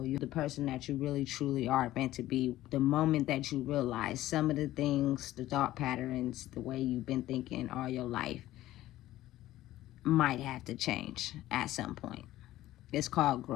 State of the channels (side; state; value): right; quieter; 15.1 dB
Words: You're the person that you really truly are meant to be. The moment that you realize some of the things, the thought patterns, the way you've been thinking all your life might have to change at some point. It's called